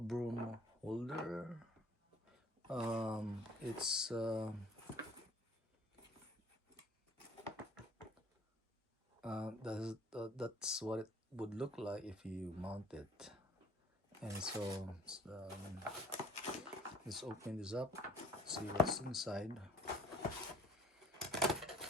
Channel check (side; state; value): both; normal; correlation 0.54